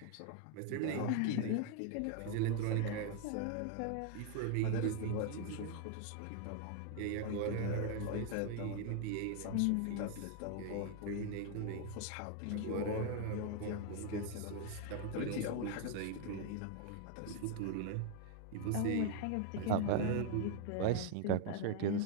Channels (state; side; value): different; both; correlation 0.00